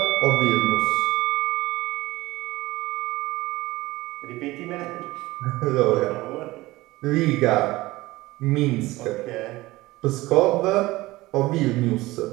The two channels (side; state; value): left; quieter; 19.2 dB